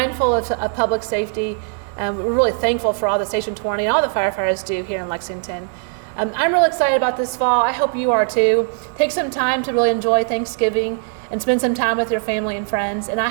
of public safety. We're really thankful for all the Station 20 and all the firefighters do here in Lexington. I'm really excited about this fall. I hope you are too. Take some time to really enjoy Thanksgiving and spend some time with your family and friends. And I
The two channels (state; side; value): silent; left; 58 dB below the other